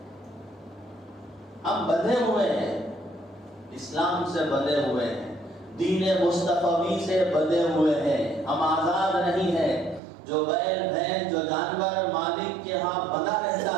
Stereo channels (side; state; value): left; drops out; at 10.0 s